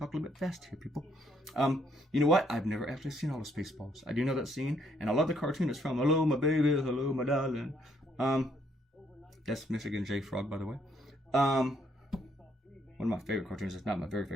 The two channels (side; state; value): both; normal; correlation 0.70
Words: a little bit fast here, people. You know what? I've never actually seen all the Spaceballs. I do know that scene, and I love the cartoon it's from. Hello, my baby. Hello, my darling. That's Michigan J. Frog, by the way. One of my favorite cartoons. It's not my very